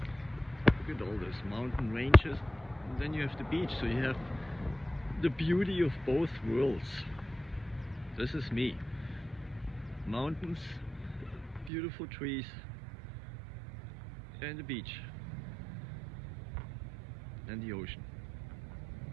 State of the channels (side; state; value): left; drops out; at 11.7 s